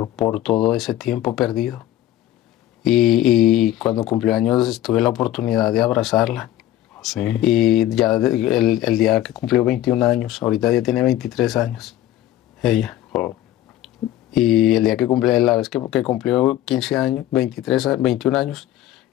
todo ese tiempo perdido. Y cuando cumplió años tuve la oportunidad de abrazarla. Sí. Y ya el día que cumplió 21 años, ahorita ya tiene 23 años, ella. Oh. Y el día que cumplió, la vez que cumplió 15 años, 21 años,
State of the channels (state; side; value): quieter; right; 13.4 dB